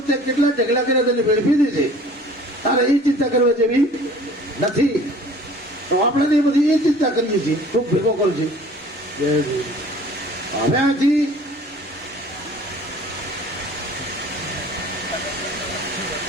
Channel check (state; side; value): normal; both; correlation 0.48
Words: કેટલા ઢગલા કર્યા તેને ભેળ પી દેશે. તારે એ ચિંતા કરવા જેવી નથી. તો આપણે એ બધી એ ચિંતા કરીએ છીએ, ખૂબ ભેગો કરું છે. હવે આથી